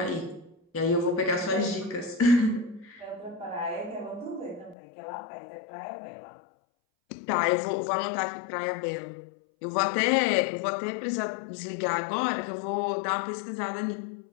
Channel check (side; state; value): right; drops out; at 4.8 s